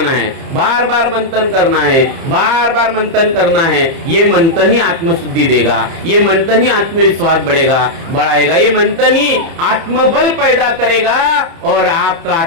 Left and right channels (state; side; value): late; left; 30 ms